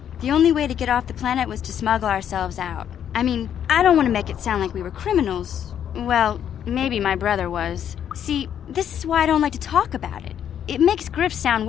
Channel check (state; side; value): quieter; right; 9.4 dB